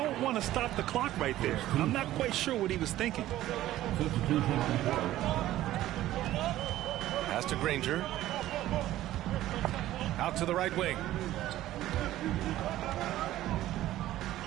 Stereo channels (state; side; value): quieter; left; 14.4 dB